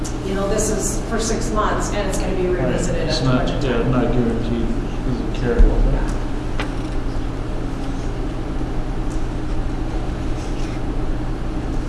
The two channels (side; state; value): both; identical; correlation 1.00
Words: this is for 6 months and it's going to be revisited It's at the not, budget yeah, time. not guaranteed, doesn't carry over.